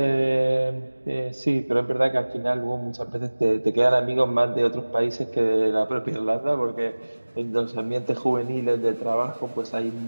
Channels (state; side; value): inverted; both; correlation -1.00